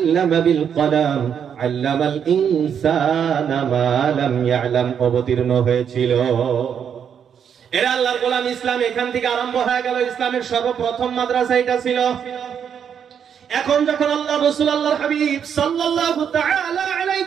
বিল কলাম, আল্লামাল ইনসানা মা লাম ইয়ালাম অবতীর্ণ হয়েছিল। এরা আল্লাহর গোলাম। ইসলাম এখান থেকে আরম্ভ হয়ে গেল। ইসলামের সর্বপ্রথম মাদ্রাসা এটা ছিল। এখন যখন আল্লাহ রাসূল আল্লাহর হাবিব সাল্লাল্লাহু তাআলা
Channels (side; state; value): left; quieter; 7.9 dB